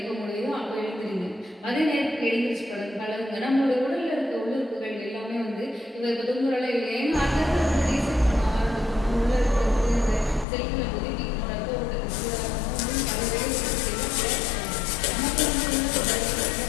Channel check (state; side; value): drops out; right; at 10.5 s